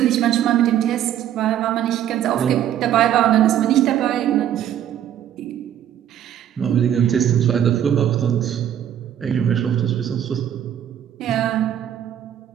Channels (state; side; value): quieter; left; 10.5 dB